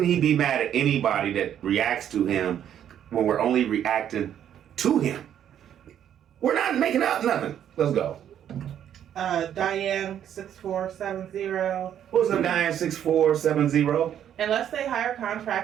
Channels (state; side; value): quieter; left; 9.9 dB